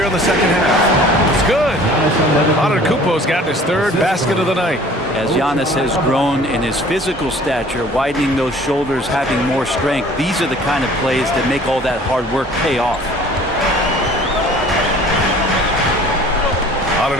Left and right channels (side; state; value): both; normal; correlation 0.50